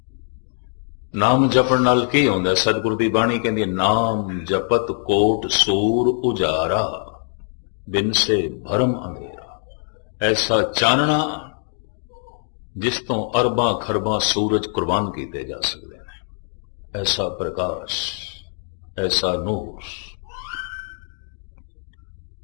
नाम जपण नाल की होंदा? सतगुरु दी बाणी कहंदी नाम जपत कोट सूर उजारा, बिन से भरम अंधेरा। ऐसा चानना जिस तो अरबां खरबां सूरज कुर्बान किए जा सकते हैं, ऐसा प्रकाश, ऐसा नूर।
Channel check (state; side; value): silent; right; digital silence